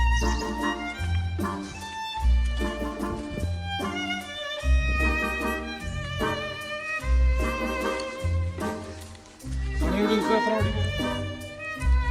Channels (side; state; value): both; identical; correlation 1.00